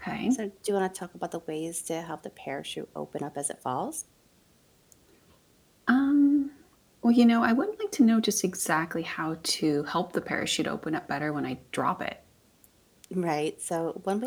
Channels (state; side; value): identical; both; correlation 1.00